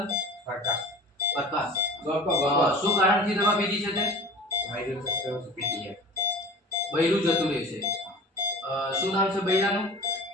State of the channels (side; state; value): both; normal; correlation 0.39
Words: પ્રકાશ. પ્રકાશ, શું કારણથી દવા પીધી છે તે? બૈરું જતું રહે છે. શું નામ છે બૈરાનું?